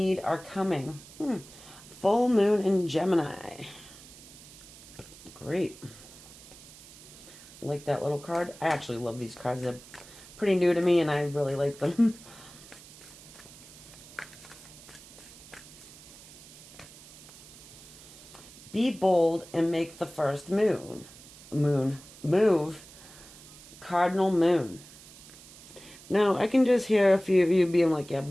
are coming. Full moon in Gemini. Great. Like that little card. I actually love these cards. They're pretty new to me and I really like them. Be bold and make the first move. Cardinal moon. Now, I can just hear a few of you being like, yeah,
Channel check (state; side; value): noise; right; hiss, 19 dB below the sound